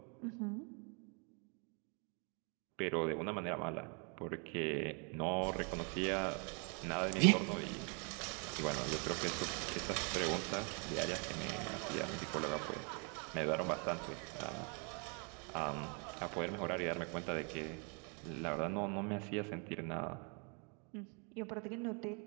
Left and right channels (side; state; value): left; quieter; 36.1 dB